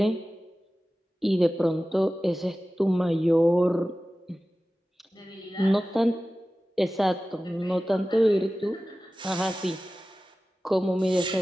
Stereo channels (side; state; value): both; normal; correlation 0.96